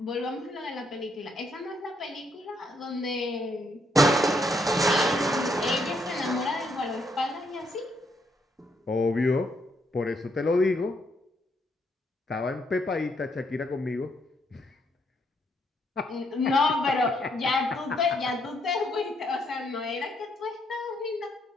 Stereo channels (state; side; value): normal; both; correlation 0.74